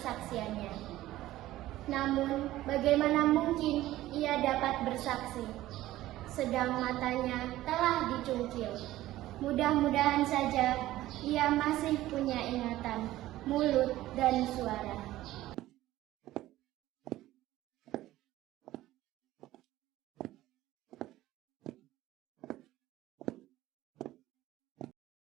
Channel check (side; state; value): left; quieter; 15.5 dB